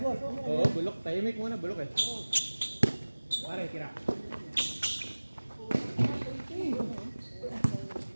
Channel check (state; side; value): inverted; both; correlation -1.00